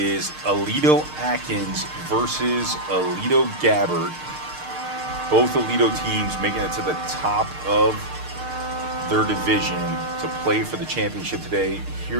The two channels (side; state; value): left; late; 6.6 ms